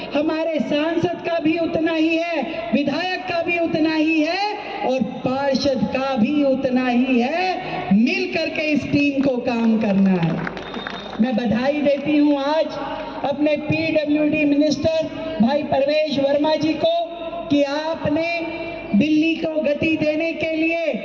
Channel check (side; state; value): both; identical; correlation 1.00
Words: हमारे सांसद का भी उतना ही है, विधायक का भी उतना ही है, और पार्षद का भी उतना ही है। मिल करके इस टीम को काम करना है। मैं बधाई देती हूं आज अपने पीडब्ल्यूडी मिनिस्टर भाई परवेश वर्मा जी को, कि आपने दिल्ली को गति देने के लिए